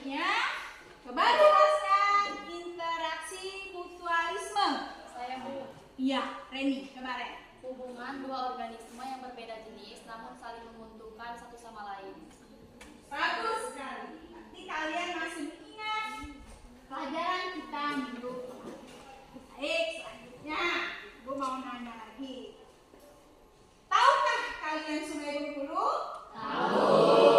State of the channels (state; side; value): identical; both; correlation 1.00